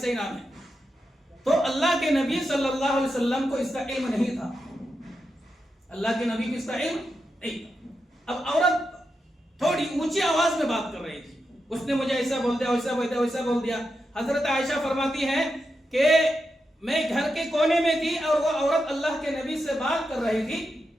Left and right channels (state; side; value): normal; both; correlation 0.87